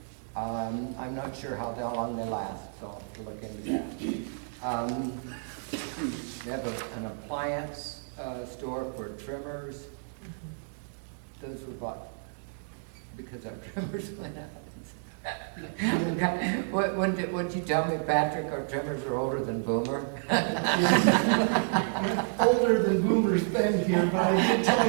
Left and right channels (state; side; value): silent; left; digital silence